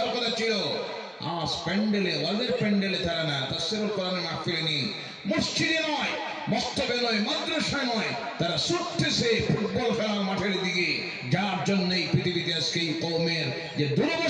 কথা ছিল, আজ প্যান্ডেলে, ওয়াজের প্যান্ডেলে তারা না, তাফসীরুল কোরআনের মাহফিলে নেই, মসজিদে নয়, মস্তবে নয়, মাদ্রাসায় নয়, তারা ছুটতেছে ফুটবল খেলার মাঠের দিকে। যার জন্য এই পৃথিবীতে আজকে এই কওমের যে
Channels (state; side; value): identical; both; correlation 1.00